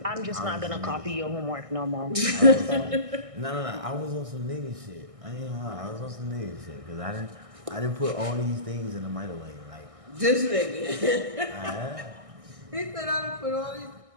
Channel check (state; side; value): late; left; 1.6 ms